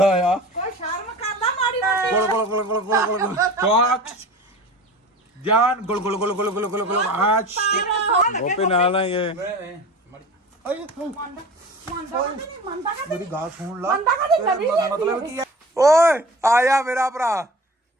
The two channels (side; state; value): both; normal; correlation 0.37